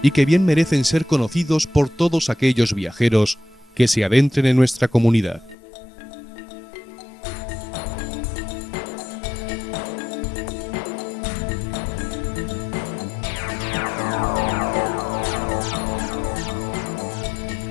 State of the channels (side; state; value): right; drops out; at 5.6 s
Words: y que bien merecen ser conocidos por todos aquellos viajeros que se adentren en nuestra comunidad.